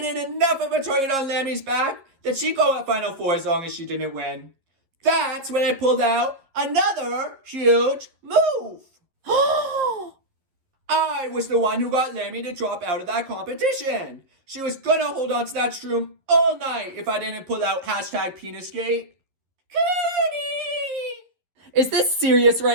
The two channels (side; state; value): left; late; 11 ms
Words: enough of a target on Lammy's back that she'd go at Final Four as long as she didn't win. That's when I pulled out another huge move. I was the one who got Lammy to drop out of that competition. She was gonna hold on to that shroom all night if I didn't pull out hashtag Penisgate. Cooney! Is this serious